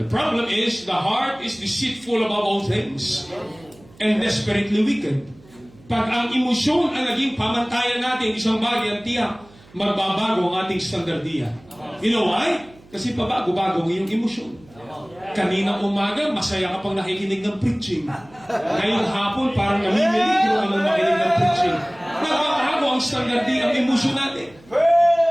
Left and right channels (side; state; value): right; noise; hum, 26 dB below the sound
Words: problem is, the heart is deceitful above all things and desperately wicked. Pag ang emosyon ang naging pamantayan natin, isang bagay ang tiyak, magbabago ang ating standardiya. You know why? Kasi pabago-bago ang iyong emosyon. Kanina umaga, masaya ka pang nakikinig ng preaching. Ngayong hapon, parang namimilig ka nang makinig ng preaching. Nagbabago ang standardiya, ang emosyon natin.